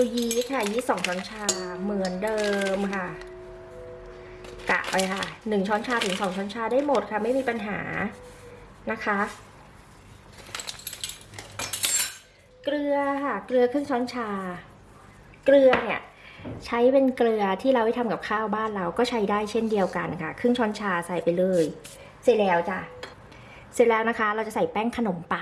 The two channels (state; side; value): identical; both; correlation 1.00